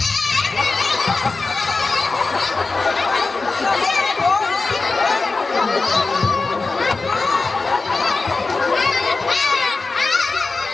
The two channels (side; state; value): right; quieter; 3.8 dB